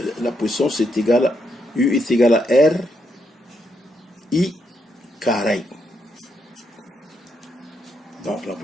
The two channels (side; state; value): both; normal; correlation 0.79